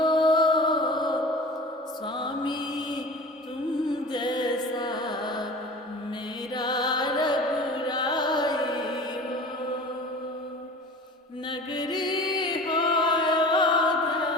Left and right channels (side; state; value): both; normal; correlation 0.39